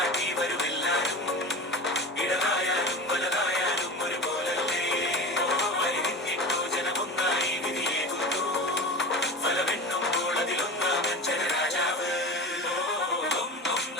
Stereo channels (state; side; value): normal; both; correlation 0.30